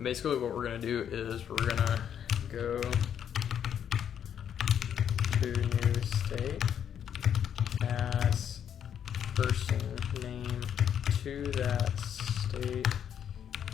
Basically what we're gonna do is we're gonna go to new state, pass person name to that state,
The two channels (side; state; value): right; quieter; 8.9 dB